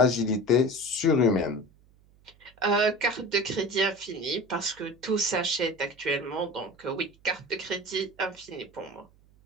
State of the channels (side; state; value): right; noise; hum, 29 dB below the sound